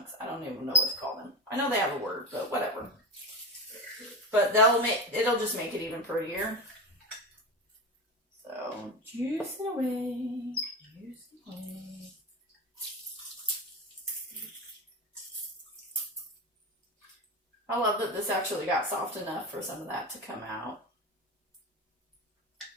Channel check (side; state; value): both; normal; correlation 0.22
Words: I don't even know what to call them. I know they have a word, but whatever. But it'll just make it even prettier. So juice it away. Juice it away. I love that this actually got soft enough for some of that to come out.